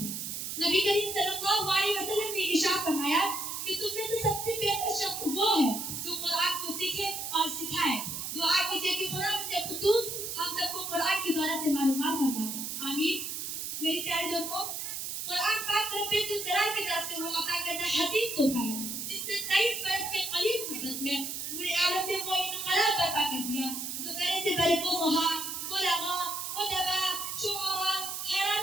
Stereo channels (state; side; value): noise; right; hiss, 5 dB below the sound